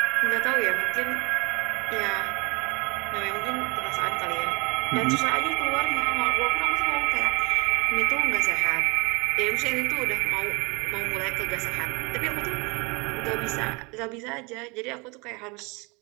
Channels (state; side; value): quieter; left; 28.1 dB